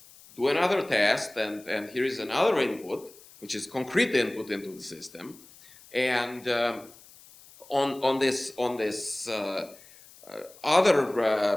do another test, and here is another input, which is concrete input into the system. And on this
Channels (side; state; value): left; noise; hiss, 23 dB below the sound